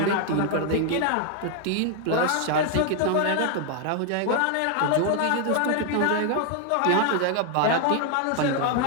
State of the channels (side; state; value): both; different; correlation 0.00